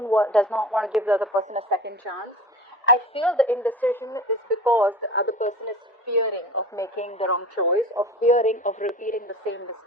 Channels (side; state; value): both; normal; correlation 0.37